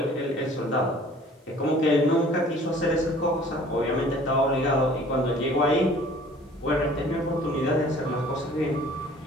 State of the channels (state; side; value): normal; both; correlation 0.51